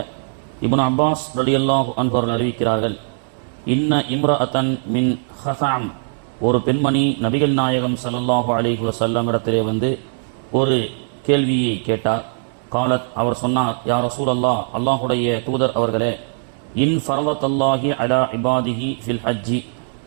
ابن عباس رضي الله عنه அறிவிக்கிறார்கள் இன்ன இம்ரஅத்தன் மின் ஹஸாம் ஒரு பெண்மணி நபிகள் நாயகம் ஸல்லல்லாஹு அலைஹி வஸல்லம் இடத்திலே வந்து ஒரு கேள்வியை கேட்டார். காலத் அவர் சொன்னார், யா ரசூலல்லாஹ், அல்லாஹுடைய தூதர் அவர்களே, இன் ஃபரவத்தல்லாஹி அலா இபாதிஹி ஃபில் ஹஜ்ஜி,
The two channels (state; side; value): silent; left; digital silence